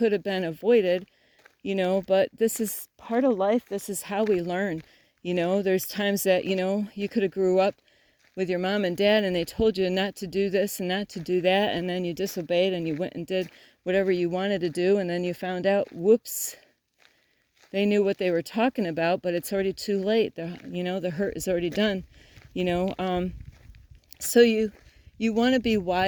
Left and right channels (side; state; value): both; identical; correlation 1.00